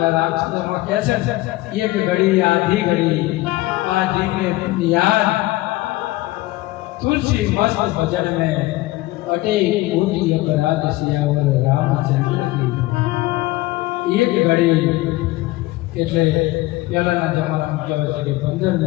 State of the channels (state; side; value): quieter; right; 18.7 dB